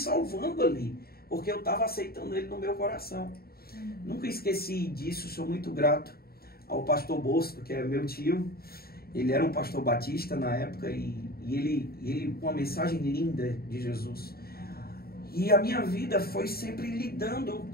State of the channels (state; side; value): late; right; 0.45 ms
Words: ali, porque eu estava aceitando Ele no meu coração. Nunca esqueci disso, sou muito grato ao pastor Bosco, que é meu tio. Ele era um pastor batista na época e ele com uma mensagem linda de Jesus. E a minha vida foi sempre lidando